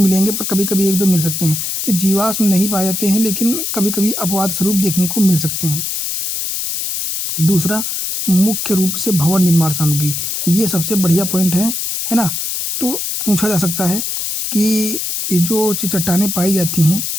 पर कभी कभी एक दो मिल सकते हैं। तो जीवाश्म नहीं पाए जाते हैं लेकिन कभी कभी अपवाद स्वरूप देखने को मिल सकते हैं। दूसरा, मुख्य रूप से भवन निर्माण सामग्री, ये सबसे बढ़िया पॉइंट है ना। तो पूछा जा सकता है कि ये जो चट्टानें पाई जाती हैं,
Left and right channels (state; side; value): noise; left; hiss, 3 dB below the sound